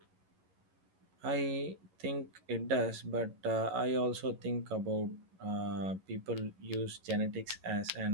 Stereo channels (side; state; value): left; late; 11 ms